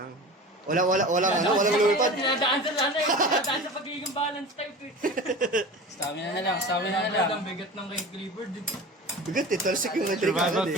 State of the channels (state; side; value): normal; both; correlation 0.35